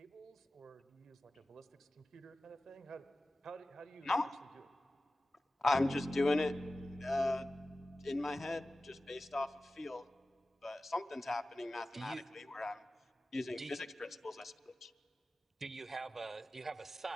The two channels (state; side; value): normal; both; correlation 0.95